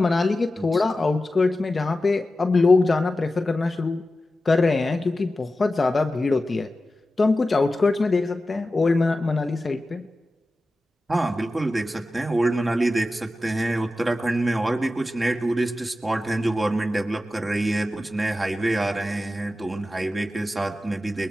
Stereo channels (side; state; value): both; normal; correlation 0.93